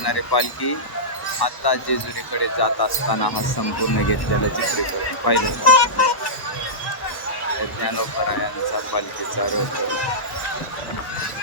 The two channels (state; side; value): late; right; 1.1 ms